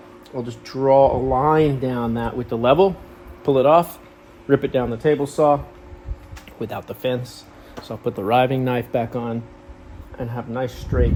I'll just draw a line down that with the level, pull it off, rip it down the table saw without the fence. So I'll put the riving knife back on and have a nice straight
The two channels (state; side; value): identical; both; correlation 1.00